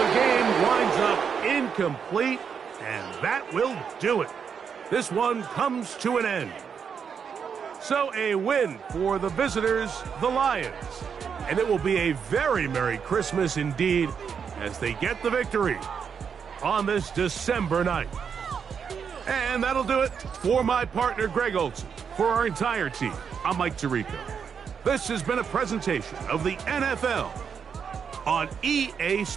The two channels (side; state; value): left; quieter; 6.8 dB